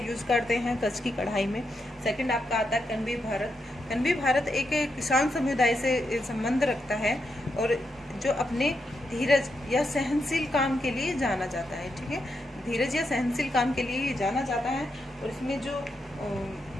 करते हैं कच्छ की कढ़ाई में। सेकंड आपका आता है कनवी भारत। कनवी भारत एक किसान समुदाय से संबंध रखता है और जो अपने धीरज या सहनशील काम के लिए जाना जाता है, ठीक है। धीरज या सहनशील काम के लिए जाना जाता है। और इसमें जो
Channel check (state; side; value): normal; both; correlation 0.83